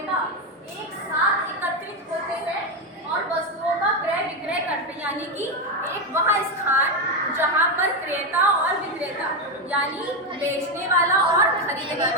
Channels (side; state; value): both; normal; correlation 0.09